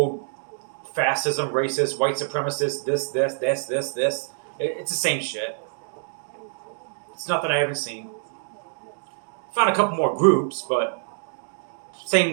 fascism, racist, white supremacist, this. It's the same shit. It's nothing I haven't seen. Found a couple more groups, but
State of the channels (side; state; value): left; silent; digital silence